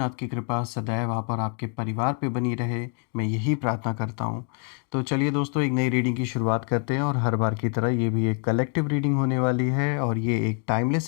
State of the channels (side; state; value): right; quieter; 38.5 dB